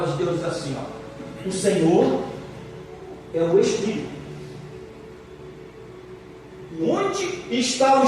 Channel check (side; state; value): both; identical; correlation 1.00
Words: de Deus diz assim, ó: o Senhor é o Espírito. Onde está o